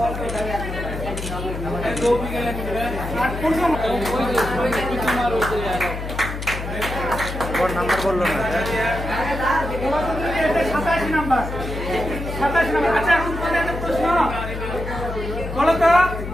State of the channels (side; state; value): left; noise; hum, 7 dB below the sound